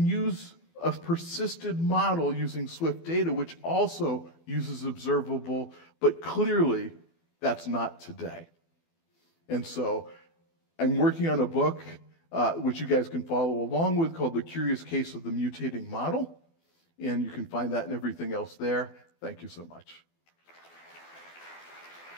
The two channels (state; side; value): late; right; 24 ms